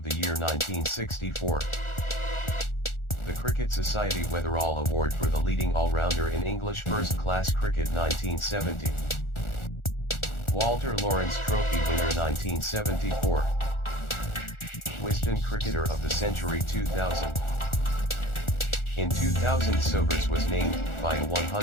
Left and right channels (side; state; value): right; late; 1.4 ms